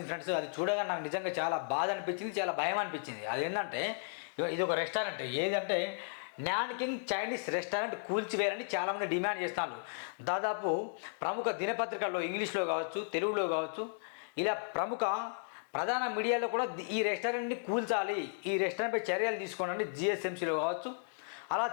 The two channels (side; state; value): right; silent; digital silence